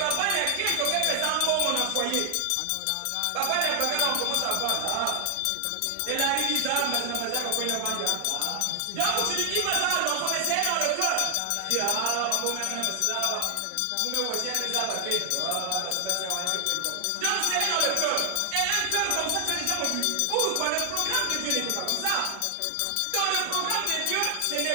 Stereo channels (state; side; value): different; both; correlation 0.00